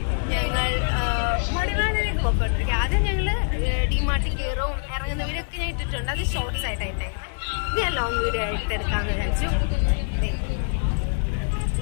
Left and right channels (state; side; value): silent; right; digital silence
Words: ഞങ്ങൾ മടിവാളിലേക്ക് പോയിക്കൊണ്ടിരിക്കുക. ആദ്യം ഞങ്ങൾ ഡിമാർട്ടിൽ കയറും ഇറങ്ങുന്ന വീഡിയോ ഒക്കെ ഞാൻ ഇട്ടിട്ടുണ്ട്, അത് ഷോർട്ട്സ് ആയിട്ടായിട്ട്. ഇത് ഞാൻ ലോങ് വീഡിയോ ആയിട്ട് എടുക്കാമെന്ന് വിചാരിച്ചു.